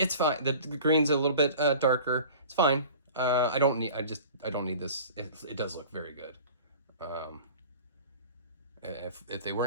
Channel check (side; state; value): both; inverted; correlation -0.42